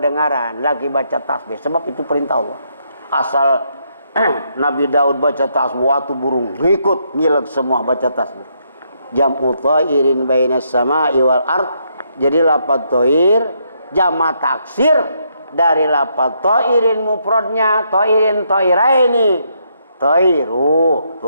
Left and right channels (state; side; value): inverted; both; correlation -0.76